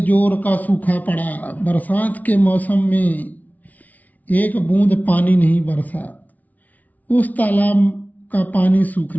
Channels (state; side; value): late; right; 0.075 ms